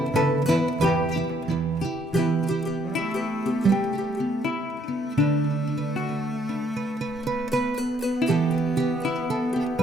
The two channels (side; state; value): both; normal; correlation 0.69